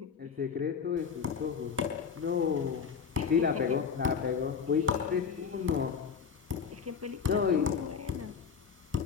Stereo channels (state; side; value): quieter; right; 6.4 dB